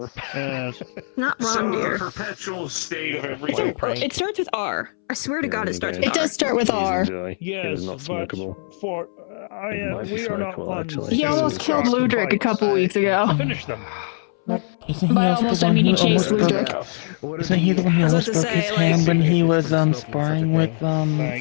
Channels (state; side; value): silent; right; 65 dB below the other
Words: Yes. Not So wrong, the dear. perpetual state of It's everything. it starts with R. I swear to God, it starts with It R. does start with R. Yes, not but smokable. for we are not ones. He almost killed Ludric a couple weeks ago. Finish them. Isn't he By also almost, the I one mean he who chased almost broke? Ludric. Isn't he the one who I was almost about to broke his say, like- hand when he was sparring with